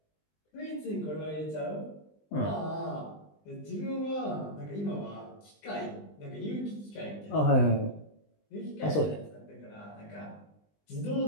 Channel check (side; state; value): right; late; 20 ms